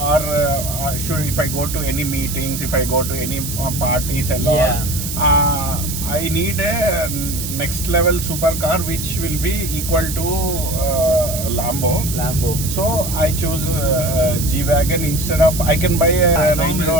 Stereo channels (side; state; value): right; noise; hiss, 6 dB below the sound